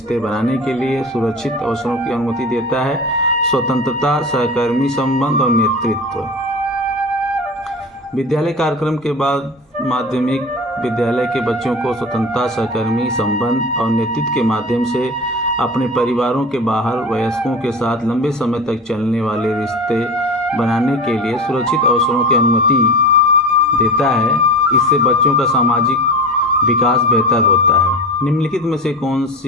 बनाने के लिए सुरक्षित अवसरों की अनुमति देता है? स्वतंत्रता, सहकर्मी संबंध और नेतृत्व। विद्यालय कार्यक्रम के बाद माध्यमिक विद्यालय के बच्चों को स्वतंत्रता, सहकर्मी संबंध और नेतृत्व के माध्यम से अपने परिवारों के बाहर वयस्कों के साथ लंबे समय तक चलने वाले रिश्ते बनाने के लिए सुरक्षित अवसरों की अनुमति देता है। इससे बच्चों का सामाजिक विकास बेहतर होता है। निम्नलिखित में से कौन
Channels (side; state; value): both; normal; correlation 0.31